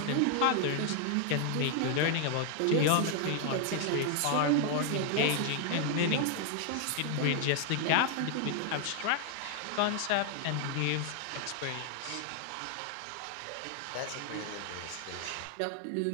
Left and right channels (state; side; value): different; both; correlation 0.00